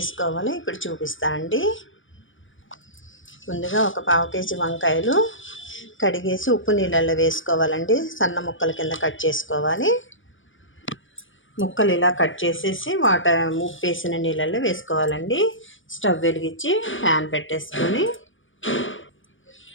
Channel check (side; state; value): right; late; 0.57 ms